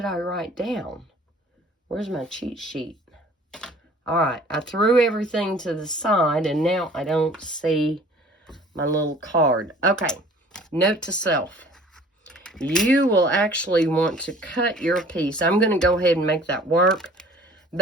I write down? Where's my cheat sheet? All right, I threw everything to the side, and now I don't see my little card. Okay, note to self. you will actually want to cut your piece. I'm going to go ahead and make that work.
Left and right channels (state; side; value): normal; both; correlation 0.50